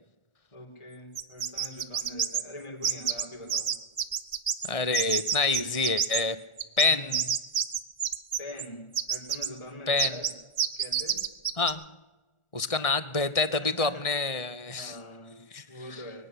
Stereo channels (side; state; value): right; late; 1.4 ms